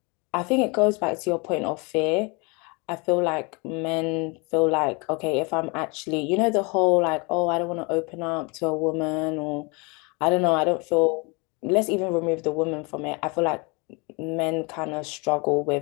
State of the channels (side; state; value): right; quieter; 29.8 dB